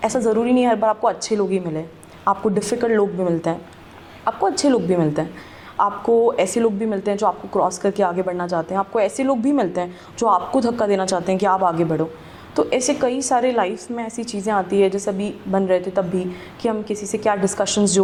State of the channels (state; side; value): identical; both; correlation 1.00